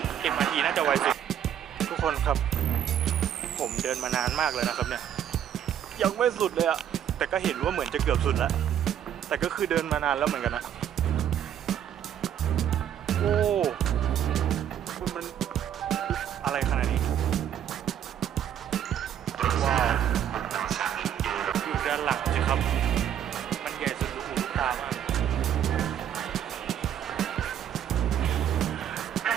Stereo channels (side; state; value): left; quieter; 9.8 dB